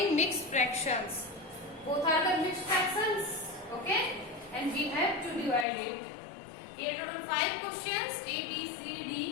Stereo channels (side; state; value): right; drops out; at 5.7 s